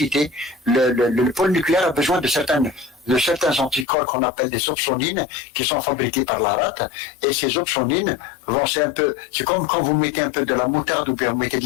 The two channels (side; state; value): right; drops out; at 3.9 s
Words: le pôle nucléaire a besoin de certains anticorps qu'on appelle des opsonines qui sont fabriqués par la rate, et ces opsonines c'est comme quand vous mettez un peu de la moutarde ou bien vous mettez de